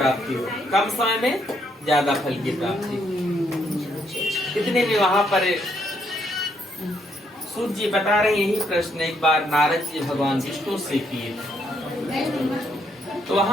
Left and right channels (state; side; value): normal; both; correlation 0.73